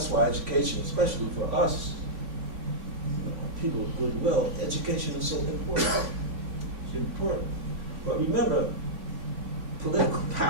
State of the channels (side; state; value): left; late; 3.5 ms